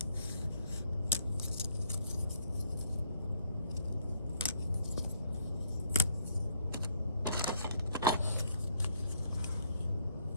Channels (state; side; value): inverted; both; correlation -0.65